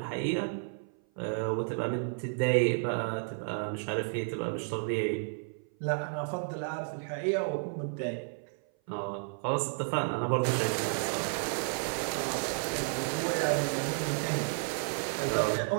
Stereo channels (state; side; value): silent; left; 56 dB below the other